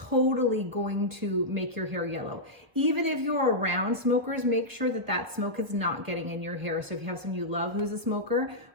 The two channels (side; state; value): left; late; 1.1 ms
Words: going to make your hair yellow. Even if you're around smokers, make sure that that smoke is not getting in your hair. So if you have someone you love who's a smoker,